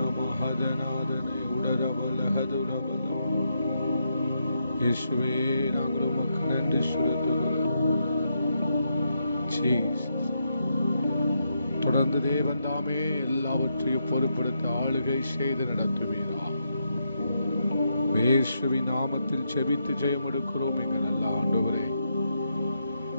மஹதநாதனே உடரபலஹதுரபலம். இயேசுவே, நாங்கள் உமக்கு நன்றி செலுத்துகிறோம். தொடர்ந்து தேவன் தாமே எல்லாவற்றையும் பொறுப்படுத்த ஆளுகை செய்து நடத்துவீரா. இயேசுவின் நாமத்தில் செபித்து ஜெயம் எடுக்கிறோம் எங்கள் நல்ல ஆண்டவரே,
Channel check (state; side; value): inverted; both; correlation -0.81